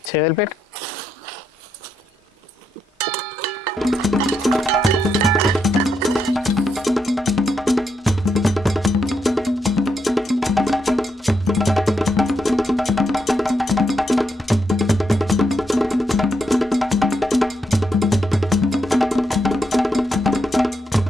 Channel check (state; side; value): normal; both; correlation 0.81